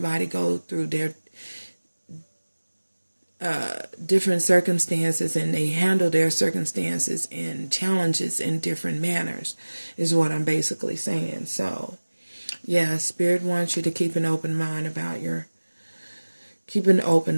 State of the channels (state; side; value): inverted; both; correlation -1.00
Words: go through their different circumstances, and they handle their circumstances and challenges in different manners, is what I'm basically saying. So yeah, Spirit wants you to keep an open mind about keep an